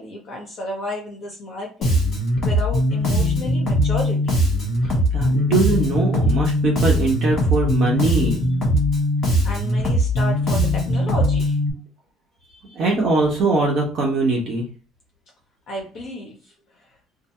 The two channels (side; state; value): both; normal; correlation 0.59